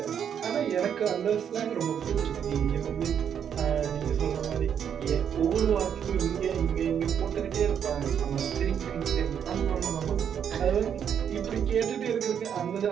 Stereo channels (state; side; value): quieter; left; 8.3 dB